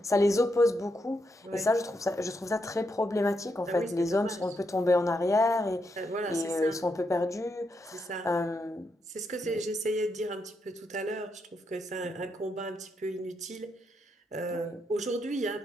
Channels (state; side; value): normal; both; correlation 0.81